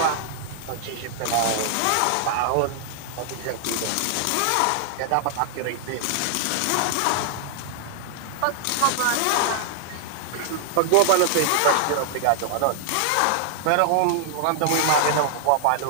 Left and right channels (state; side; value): different; both; correlation 0.00